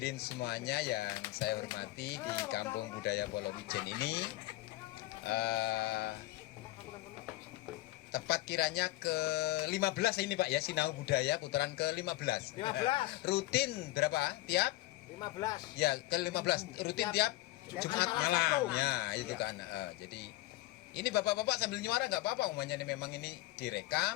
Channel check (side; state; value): right; quieter; 17.7 dB